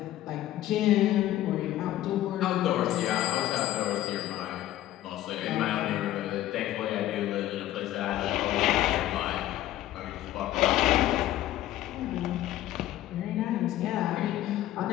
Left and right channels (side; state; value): right; quieter; 14.0 dB